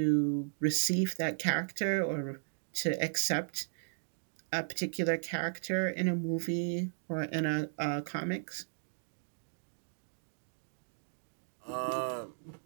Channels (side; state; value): left; silent; digital silence